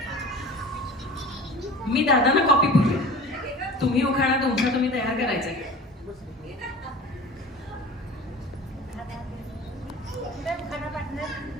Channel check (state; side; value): normal; both; correlation 0.39